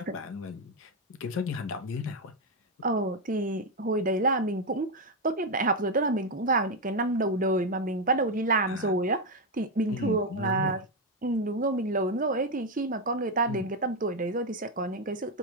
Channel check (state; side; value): normal; both; correlation 0.06